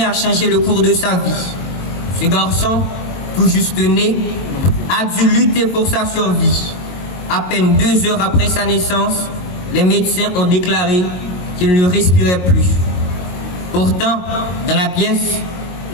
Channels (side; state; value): right; late; 22 ms